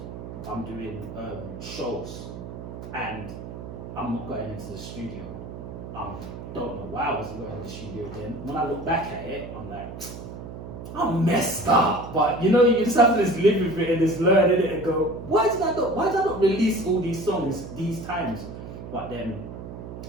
I'm doing shows, and I'm not going into the studio. Don't know why I wasn't going to the studio then. When I look back at it, I'm like, I'm messed up. But you know, you just have to just live with it and just learn in it and go, why did I not release all these songs these times? But then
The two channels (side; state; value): right; noise; hum, 10 dB below the sound